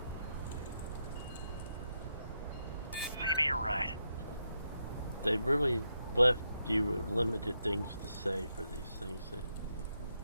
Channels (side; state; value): both; inverted; correlation -0.83